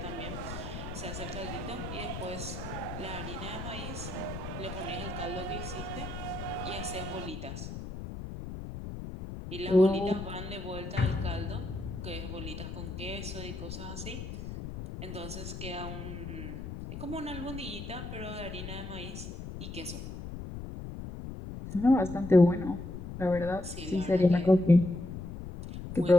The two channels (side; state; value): left; noise; rumble, 8 dB below the sound